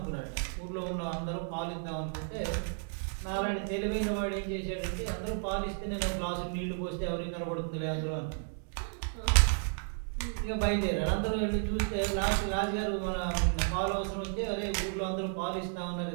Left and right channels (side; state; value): left; silent; 56 dB below the other